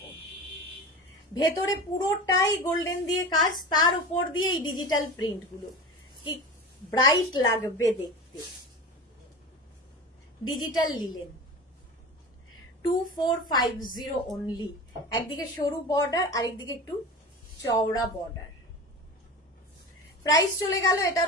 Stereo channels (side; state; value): both; normal; correlation 0.31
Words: ভেতরে পুরোটাই গোল্ডেন দিয়ে কাজ, তার উপর দিয়ে এই ডিজিটাল প্রিন্ট গুলো, কি ব্রাইট লাগবে দেখতে। Digital linen 2450 only. একদিকে সরু বর্ডার, আরেকদিকে একটু চওড়া বর্ডার। প্রাইস চলে গেল